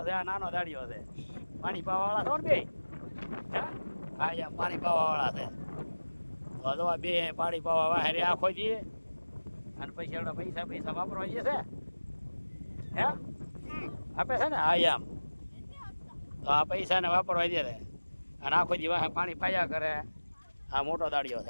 છે, આ નાનો દાડીઓ છે. પાણી પાવાવાળા છો ને બે? હા અહીંયા પાણી પાવાવાળા છે. તો જો આ બે પાણી પાવા વાહેરે આખો જઈએ અને પછી એવડા પૈસા વાપરવા જઈએ છે. હે આપે છે ને? હા એમ. તો આ પૈસાને વાપરવા દે છે અને આખો દી વાહે પાણી પાયા કરે. આ મોટો દાડીઓ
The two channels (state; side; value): inverted; both; correlation -1.00